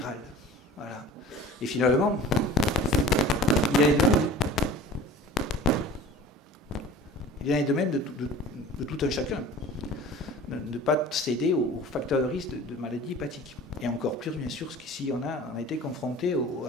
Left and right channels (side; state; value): both; normal; correlation 0.43